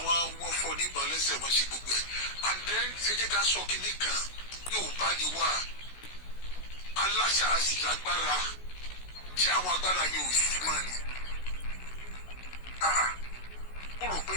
wọ́n fọ́ níbọn lẹ́sẹ̀ wọ́n ṣe gbogbo ẹ̀. and then ẹ jẹ́ ká sọ kinní kan yóò bá ní wá aláṣà sì lágbára tí àwọn agbára yóò sì máa ní. mo rò pé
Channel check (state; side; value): late; right; 16 ms